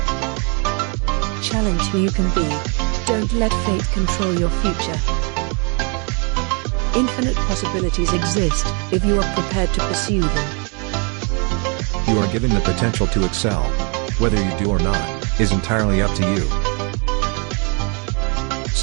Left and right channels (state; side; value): quieter; left; 35.0 dB